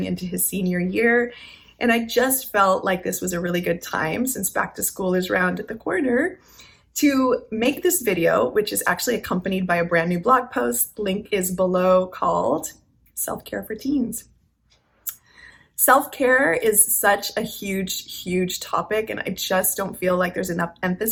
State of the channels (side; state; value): both; identical; correlation 1.00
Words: into his senior year. And I just felt like this was a really good time, since back to school is round at the corner, to make this video, which is actually accompanied by a brand new blog post. Link is below, called Self-Care for Teens. Self-care is such a huge topic, and I just don't feel like there's enough